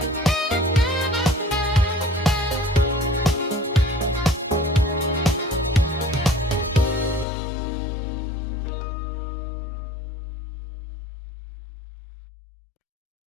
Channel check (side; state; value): right; drops out; at 7.2 s